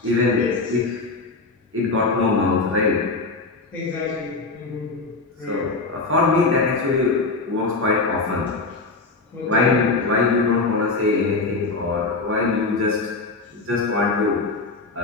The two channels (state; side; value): quieter; right; 3.7 dB